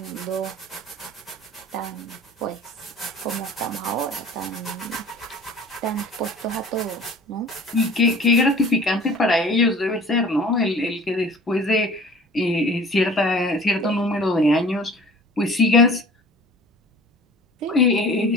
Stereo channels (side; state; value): both; normal; correlation 0.46